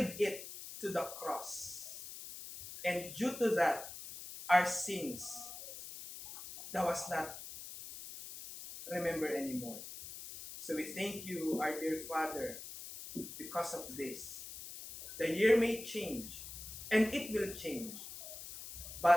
it to the cross. And due to that, our sins, that was not remembered anymore. So we thank you, our dear Father, because of this. The year may change, and it will change,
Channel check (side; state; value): left; noise; hiss, 11 dB below the sound